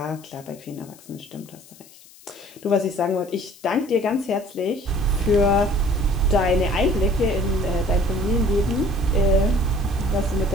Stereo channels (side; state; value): left; noise; hiss, 23 dB below the sound